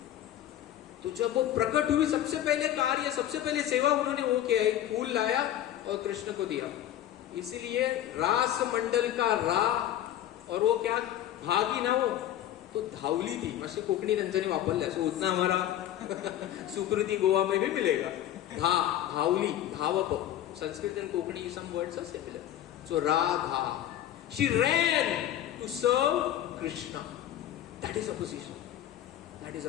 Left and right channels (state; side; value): quieter; right; 12.0 dB